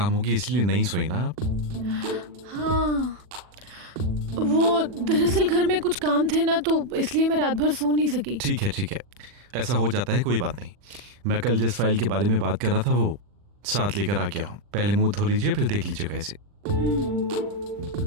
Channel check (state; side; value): late; left; 40 ms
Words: होगी, इसलिए नहीं सोई ना आप? हाँ, वो दरअसल घर में कुछ काम थे ना, तो इसलिए मैं रात भर सो नहीं सकी। ठीक है, ऐसा हो जाता है, कोई बात नहीं। मैं कल जिस फाइल के बारे में बात कर रहा था वो साथ लेकर आ गया हूँ। पहले मुंह धो लीजिए, फिर देख लीजिएगा इसे।